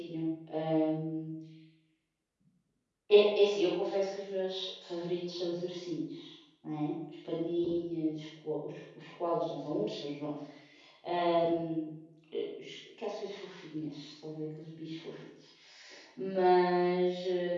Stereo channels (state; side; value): identical; both; correlation 1.00